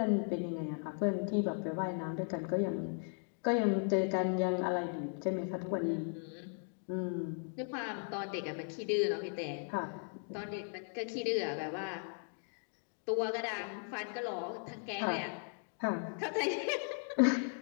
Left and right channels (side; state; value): right; silent; 53 dB below the other